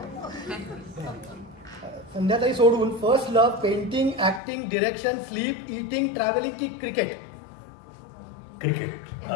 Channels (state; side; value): drops out; right; at 4.4 s